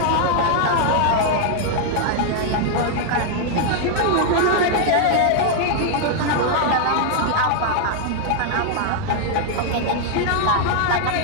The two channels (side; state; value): both; different; correlation 0.00